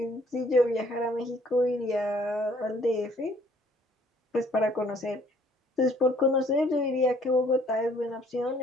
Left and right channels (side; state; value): both; normal; correlation 0.61